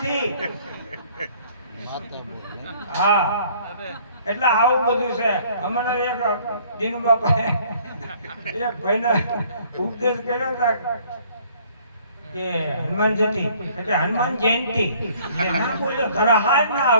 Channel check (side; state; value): both; inverted; correlation -0.58